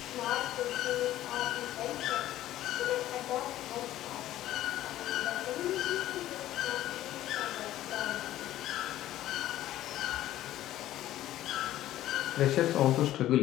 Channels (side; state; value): right; quieter; 13.8 dB